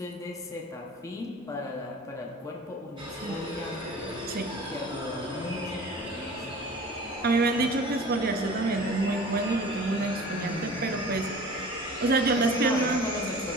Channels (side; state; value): both; normal; correlation 0.42